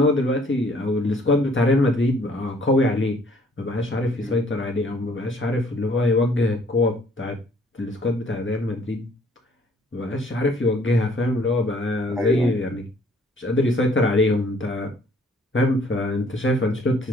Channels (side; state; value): both; normal; correlation 0.60